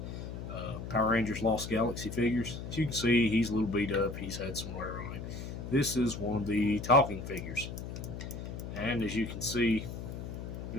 Power Rangers Lost Galaxy figures. As you can see, he's a little beat up, he's had some wear on him. This is one of the talking figures. And as you can see, we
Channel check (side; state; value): left; noise; hum, 7 dB below the sound